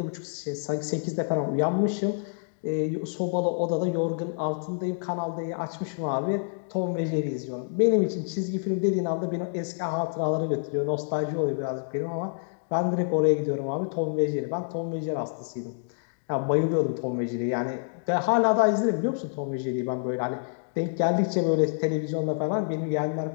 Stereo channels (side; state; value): right; silent; digital silence